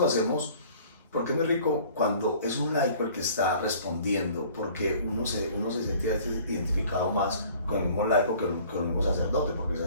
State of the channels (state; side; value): inverted; both; correlation -0.51